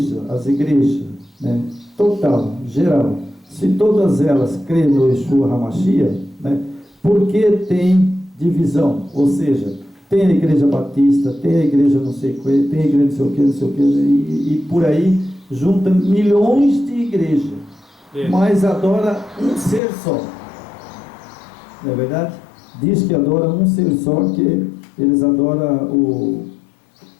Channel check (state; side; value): drops out; right; at 19.8 s